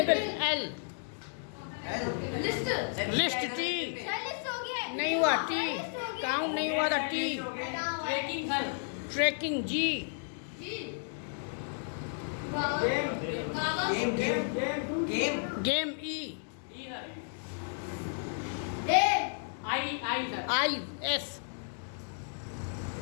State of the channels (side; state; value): right; silent; digital silence